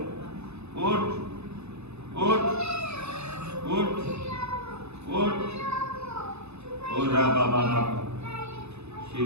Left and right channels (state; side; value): late; left; 0.80 ms